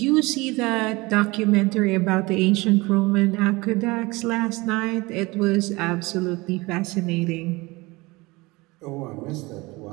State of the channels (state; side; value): quieter; left; 22.9 dB